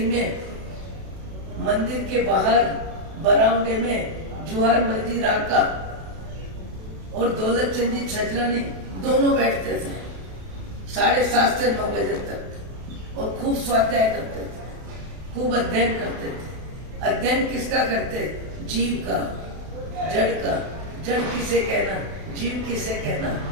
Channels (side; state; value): left; late; 32 ms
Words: में मंदिर के बाहर बरामदे में जुहार मस्जिद आका और दौलतचंद जी छजलानी दोनों बैठते थे 7:30 से 9 बजे तक और खूब स्वाध्याय करते थे, खूब अध्ययन करते थे। अध्ययन किसका करते? जीव का, जड़ का। जड़ किसे कहना, जीव किसे कहना।